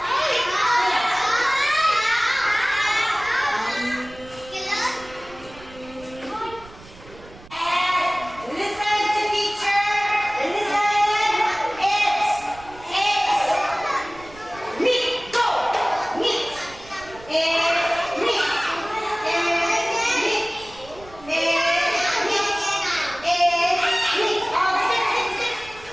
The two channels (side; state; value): right; noise; rumble, 21 dB below the sound